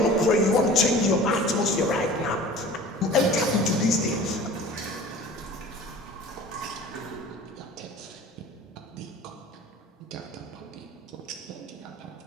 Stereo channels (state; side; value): normal; both; correlation 0.42